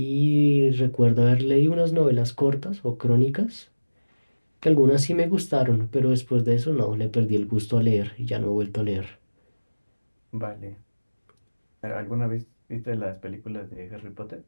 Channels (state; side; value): inverted; both; correlation -1.00